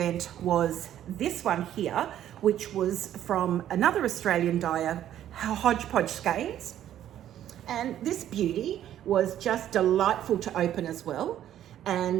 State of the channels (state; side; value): quieter; left; 11.4 dB